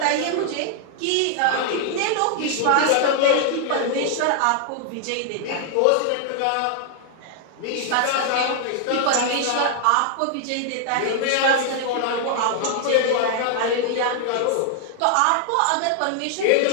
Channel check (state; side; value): different; both; correlation 0.00